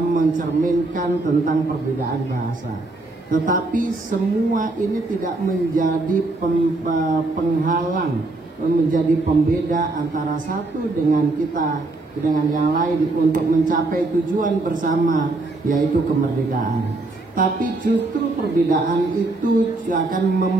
tentang perbedaan bahasa. Tetapi semua ini tidak menjadi penghalang, menjadi pembeda antara satu dengan yang lain untuk mencapai tujuan bersama, yaitu kemerdekaan. Tapi justru perbedaan itu akan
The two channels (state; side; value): quieter; left; 3.1 dB